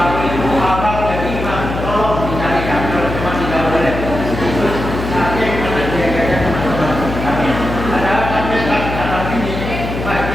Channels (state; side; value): noise; left; hum, 6 dB below the sound